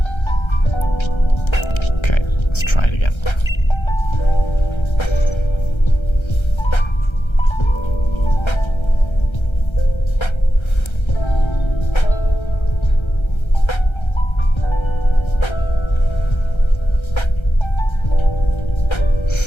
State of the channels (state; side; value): late; right; 1.3 ms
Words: Okay, let's try it again.